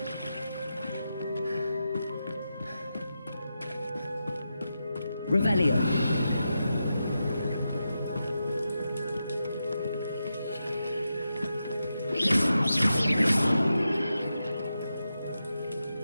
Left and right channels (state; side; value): inverted; both; correlation -0.88